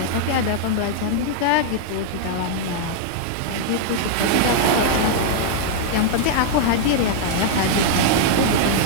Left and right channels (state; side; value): different; both; correlation -0.01